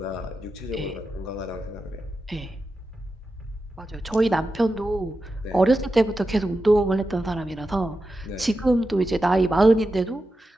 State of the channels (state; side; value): normal; both; correlation 0.90